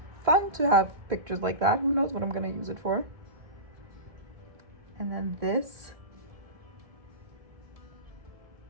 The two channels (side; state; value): left; late; 1.6 ms